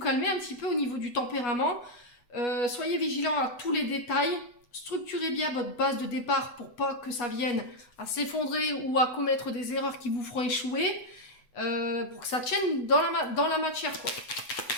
un petit peu au niveau du tempérament. Soyez vigilant à tous les détails. Structurez bien votre base de départ pour pas que ça vienne à s'effondrer ou à commettre des erreurs qui vous feront échouer. Pour que ça tienne dans la matière, quoi.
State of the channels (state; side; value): late; right; 8.0 ms